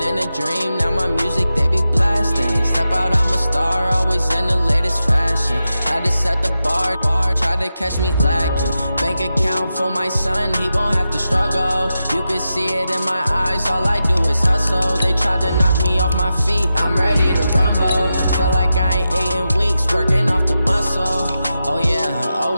in a dream, now my music they be blasting. Step out, I'm a star, always in the latest fashion. Had to set the bar, try to catch me lacking. Bank account for my son, he won't have to struggle. You can see it in my eyes, all I do is hustle. They tried to knock me off my feet, I'm ready to rumble. Feel like I ain't ate in weeks, working off the muscle. Oh yeah,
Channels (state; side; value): inverted; both; correlation -0.90